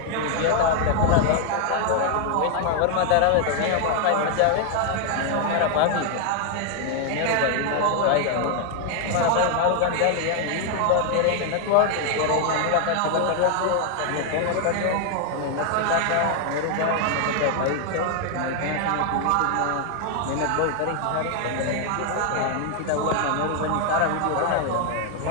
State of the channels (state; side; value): different; both; correlation 0.00